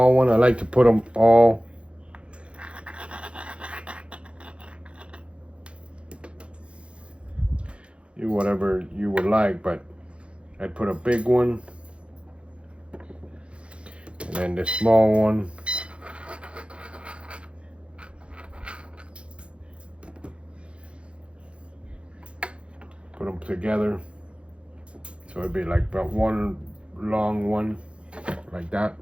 one. I like to put them all whatever you would like, but I'd put a big one and then this small one. Put them together, so it'd be like about one long one, like that.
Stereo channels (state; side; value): late; left; 0.059 ms